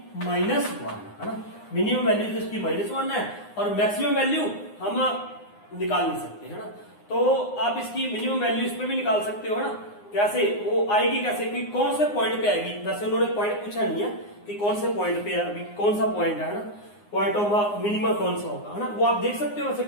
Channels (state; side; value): late; right; 9.7 ms